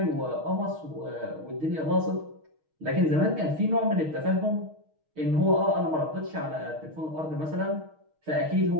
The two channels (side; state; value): left; late; 6.4 ms